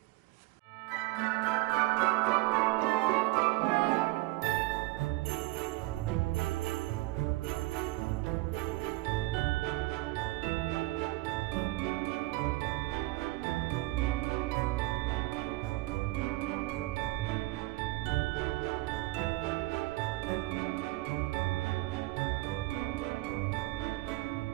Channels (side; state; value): left; quieter; 20.6 dB